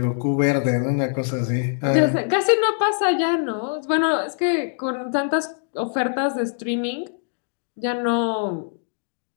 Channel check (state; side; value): silent; right; digital silence